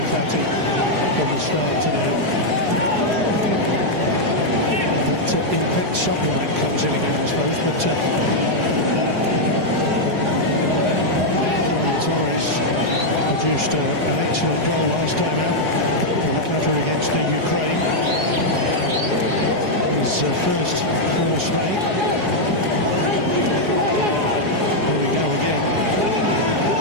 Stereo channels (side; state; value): left; late; 4.8 ms